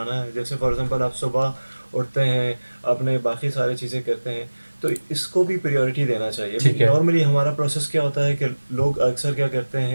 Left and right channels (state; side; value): inverted; both; correlation -1.00